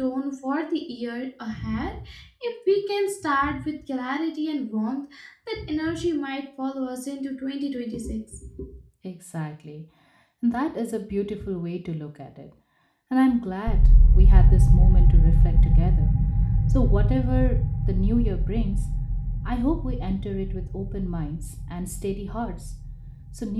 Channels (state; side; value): identical; both; correlation 1.00